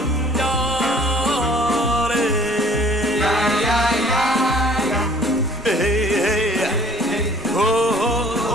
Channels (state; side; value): normal; both; correlation 0.53